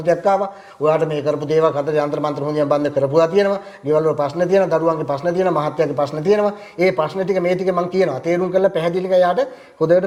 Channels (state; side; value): identical; both; correlation 1.00